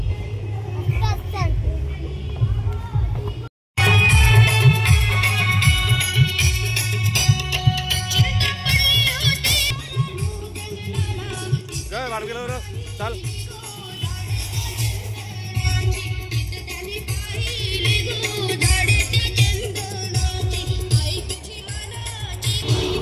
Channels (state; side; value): identical; both; correlation 1.00